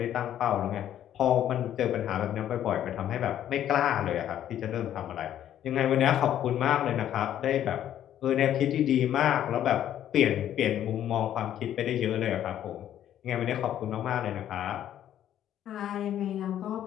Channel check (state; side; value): quieter; right; 11.1 dB